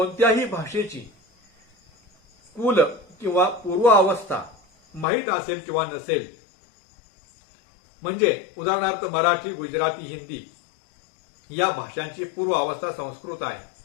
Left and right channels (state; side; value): drops out; right; at 5.1 s